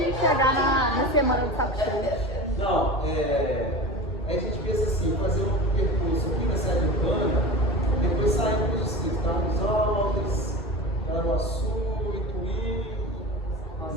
de chegar na semana do saco cheio. Não, aí a gente pensa assim, fazer um percurso aqui na sede urbana, depois sair para os distritos, Carlos Alves, Caraguaçu, Ituí,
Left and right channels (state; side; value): normal; both; correlation 0.31